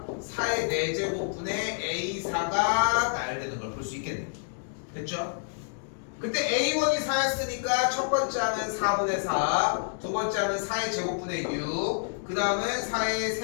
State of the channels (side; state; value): right; silent; digital silence